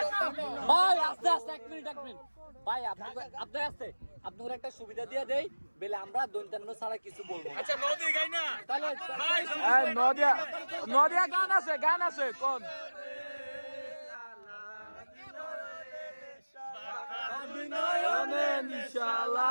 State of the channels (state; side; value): inverted; both; correlation -1.00